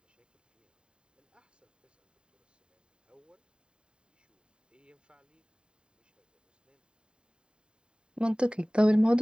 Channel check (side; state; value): left; late; 0.050 ms